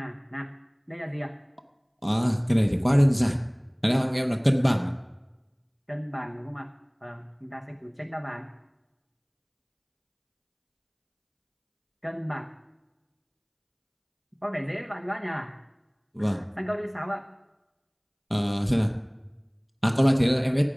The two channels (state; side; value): identical; both; correlation 1.00